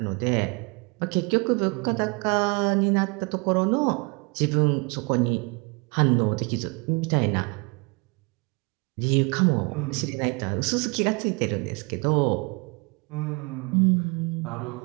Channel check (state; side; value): quieter; left; 31.1 dB